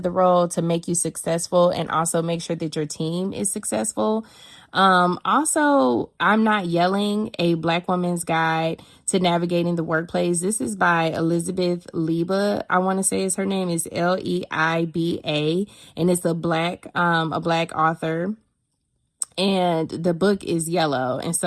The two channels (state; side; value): identical; both; correlation 1.00